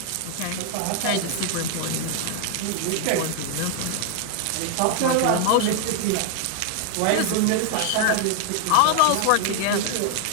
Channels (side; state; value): both; different; correlation 0.00